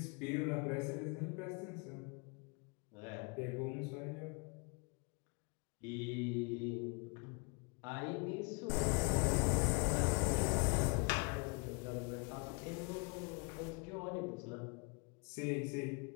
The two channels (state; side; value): quieter; right; 33.3 dB